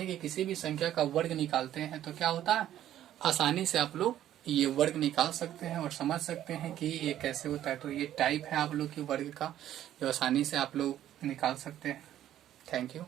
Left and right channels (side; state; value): left; quieter; 12.0 dB